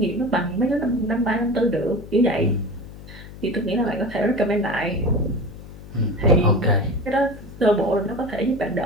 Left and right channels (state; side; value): noise; left; hum, 15 dB below the sound